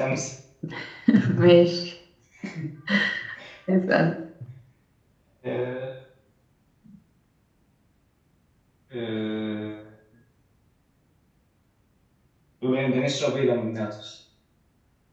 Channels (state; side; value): identical; both; correlation 1.00